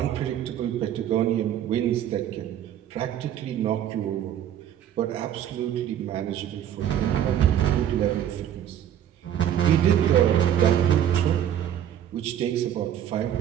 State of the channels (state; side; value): quieter; left; 10.4 dB